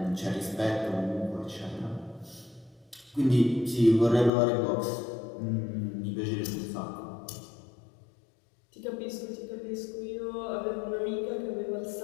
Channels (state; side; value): drops out; right; at 4.3 s